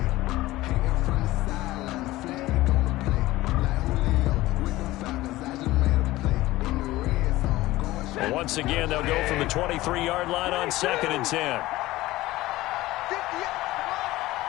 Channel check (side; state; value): right; quieter; 17.6 dB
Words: Once again, they'll go from the 23-yard line on 2nd and 10.